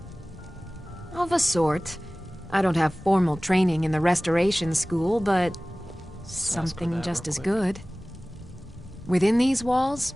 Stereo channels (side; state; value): both; normal; correlation 0.98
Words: Of a sort. I don't have formal training in the restoration school, but something just as good. Within these walls,